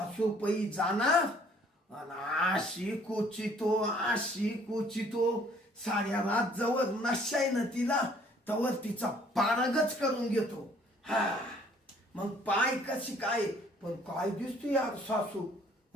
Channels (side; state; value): both; normal; correlation 0.59